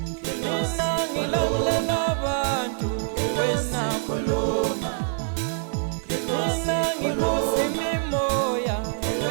mina ngilamulela abantu wena khuluma, mina ngikusi mimoya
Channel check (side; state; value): left; silent; digital silence